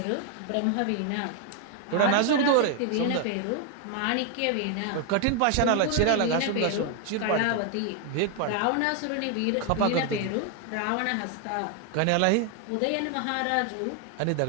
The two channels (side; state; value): both; different; correlation 0.01